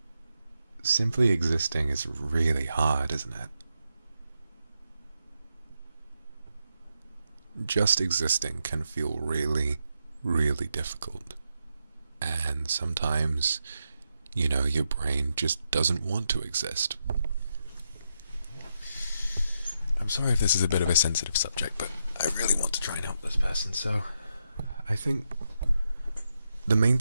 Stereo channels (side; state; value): both; inverted; correlation -0.83